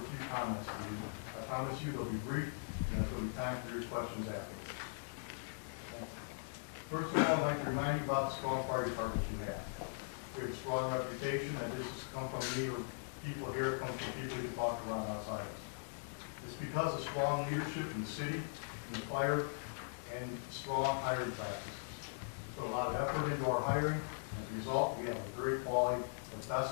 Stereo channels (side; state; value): right; silent; digital silence